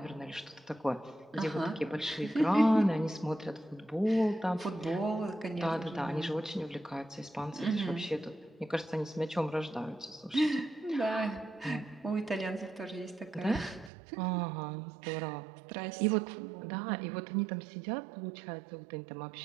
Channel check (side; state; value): left; drops out; at 13.9 s